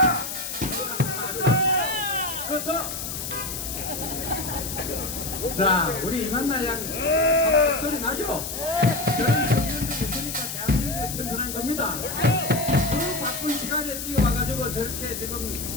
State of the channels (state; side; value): noise; left; hiss, 6 dB below the sound